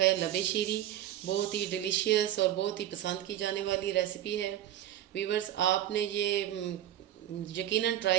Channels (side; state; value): left; quieter; 12.0 dB